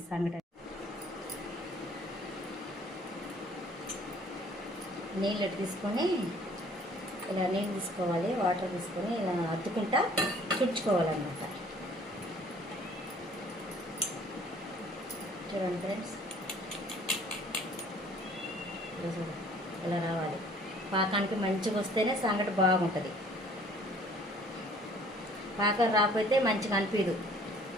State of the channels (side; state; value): both; normal; correlation 0.55